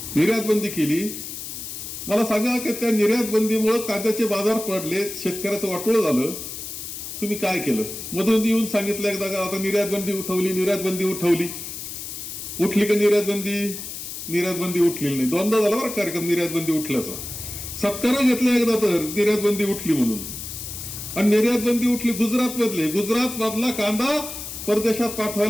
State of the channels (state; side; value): noise; left; hiss, 8 dB below the sound